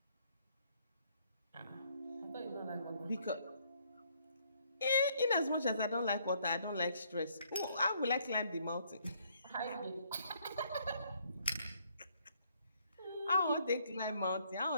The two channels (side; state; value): both; inverted; correlation -0.68